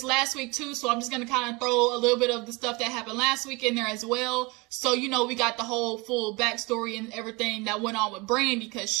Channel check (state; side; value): quieter; left; 26.1 dB